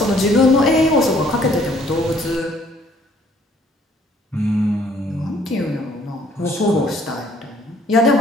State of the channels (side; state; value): both; normal; correlation 0.62